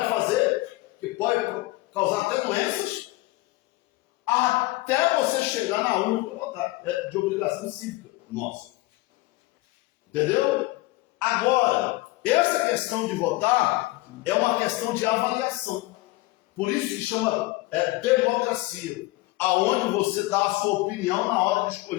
fazer, que pode causar até doenças, até você chegar na urna para votar. É de obrigação cívica nossa. Entendeu? Agora, essa questão de votar é uma questão de avaliação. Por isso que chama democracia, aonde você dá a sua opinião na hora de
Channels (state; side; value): quieter; right; 20.3 dB